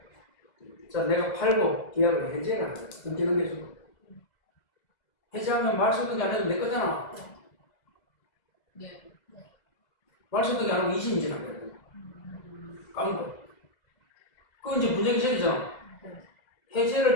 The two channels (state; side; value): late; right; 2.1 ms